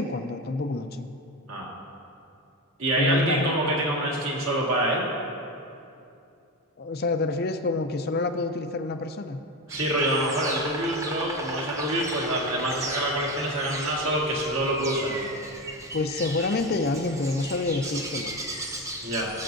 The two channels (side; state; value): both; normal; correlation 0.20